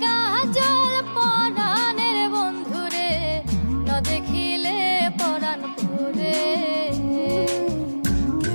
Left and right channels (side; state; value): both; inverted; correlation -1.00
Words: কাজল পরাণের বন্ধুরে, না দেখিলে পরাণ পুরে।